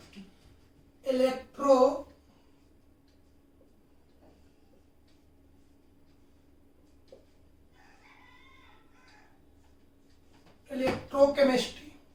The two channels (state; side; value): identical; both; correlation 1.00